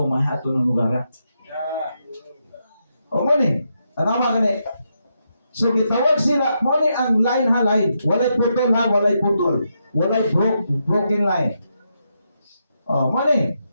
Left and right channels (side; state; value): both; inverted; correlation -0.82